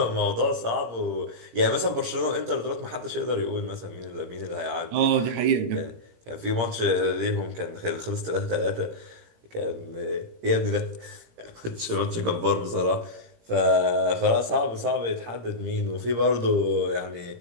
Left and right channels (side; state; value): left; late; 17 ms